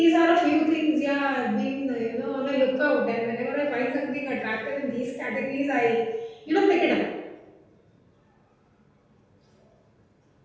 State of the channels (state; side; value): identical; both; correlation 1.00